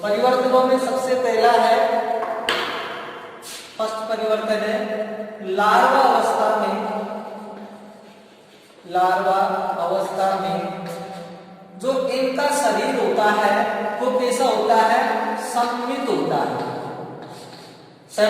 परिवर्तनों में सबसे पहला है, फर्स्ट परिवर्तन है लार्वा अवस्था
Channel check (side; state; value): both; identical; correlation 1.00